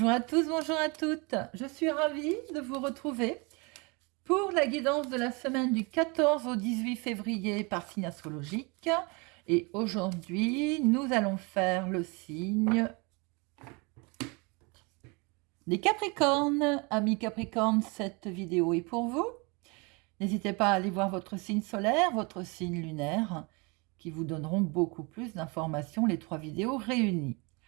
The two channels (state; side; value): quieter; left; 29.5 dB